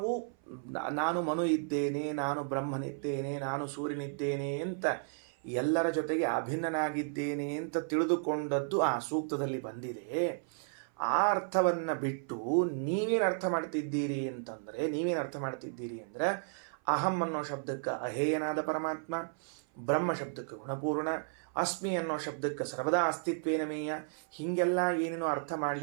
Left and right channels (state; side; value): silent; left; 55 dB below the other